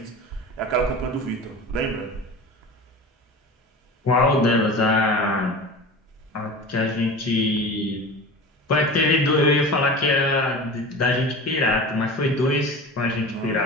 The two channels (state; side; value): normal; both; correlation 0.33